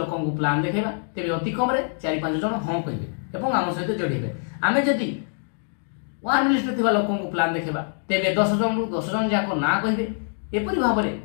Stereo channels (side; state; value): right; silent; 62 dB below the other